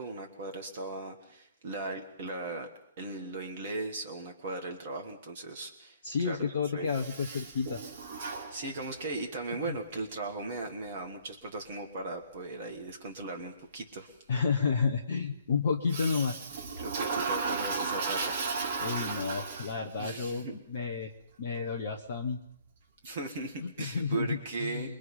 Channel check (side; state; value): both; inverted; correlation -0.61